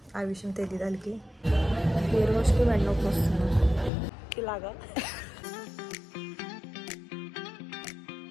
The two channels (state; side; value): drops out; right; at 3.9 s